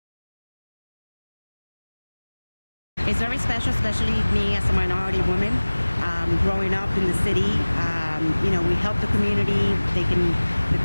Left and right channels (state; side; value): inverted; both; correlation -1.00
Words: It's very special, especially me as a minority woman, growing up in the city. You know, we help the community. The